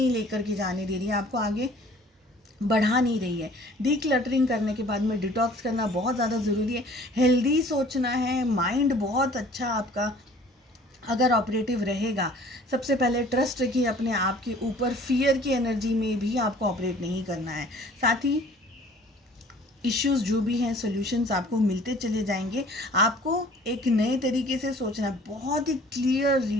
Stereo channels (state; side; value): normal; both; correlation 0.52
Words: लेकर के जाने दे रही है, आपको आगे बढ़ा नहीं रही है, डीक्लटरिंग करने के बाद में डिटॉक्स करना बहुत ज़्यादा ज़रूरी है। हेल्दी सोचना है, माइंड बहुत अच्छा आपका अगर ऑपरेटिव रहेगा। सबसे पहले ट्रस्ट रखिए अपने आप के ऊपर, फियर की एनर्जी में भी आपको ऑपरेट नहीं करना है। साथ ही इश्यूज़ जो भी हैं, सॉल्यूशंस आपको मिलते चले जाएंगे। आपको एक नए तरीके से सोचना है। बहुत ही क्लियर